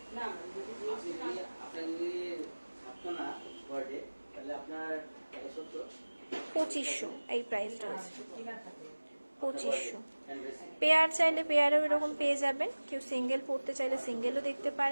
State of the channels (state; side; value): inverted; both; correlation -1.00